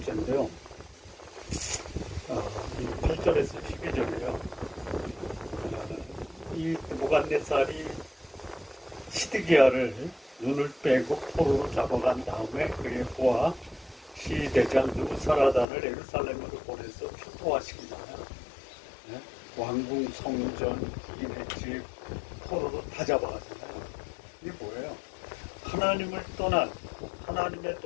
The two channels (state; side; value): drops out; right; at 15.7 s